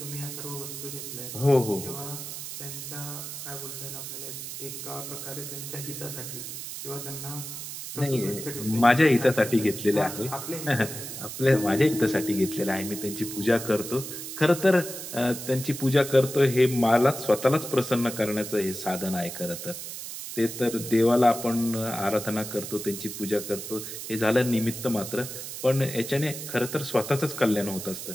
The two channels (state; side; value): noise; right; hiss, 8 dB below the sound